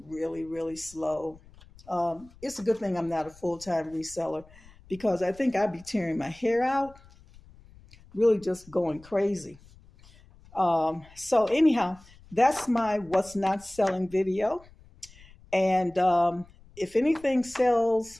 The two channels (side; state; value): left; noise; rumble, 24 dB below the sound